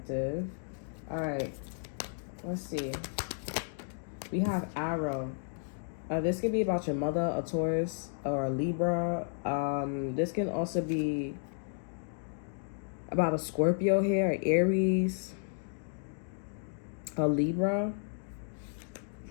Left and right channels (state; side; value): silent; right; digital silence